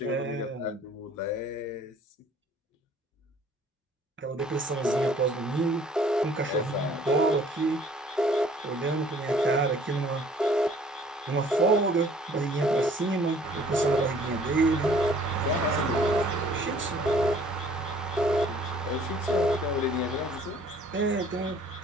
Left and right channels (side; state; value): both; normal; correlation 0.57